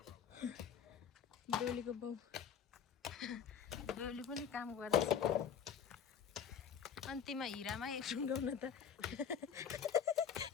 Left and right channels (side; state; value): right; quieter; 7.9 dB